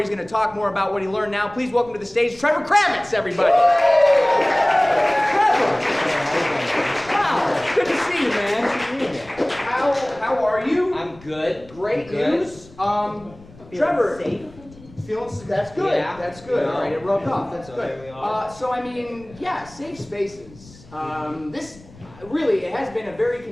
going to talk more about what he learned now. Please welcome to the stage Trevor Kravits, everybody. Trevor! Wow, good to see you, man. How are you? I'm good. Great news. Trevor, safe. That's good. Yeah. That's good. All right, it rubbed off. That's So good. there we are. So I mean, yeah, safe spaces. This really, it has been a very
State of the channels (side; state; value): left; noise; rumble, 22 dB below the sound